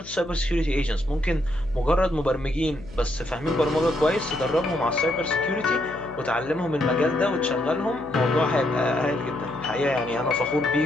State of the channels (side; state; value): left; noise; hum, 18 dB below the sound